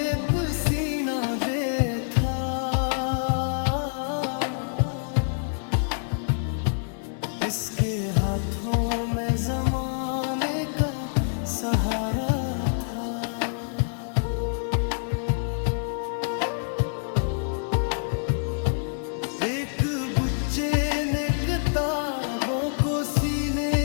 पसीना दे था, इसके हाथों में जमाने का सहारा था। एक बच्चे ने किताबों को सीने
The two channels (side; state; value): right; silent; digital silence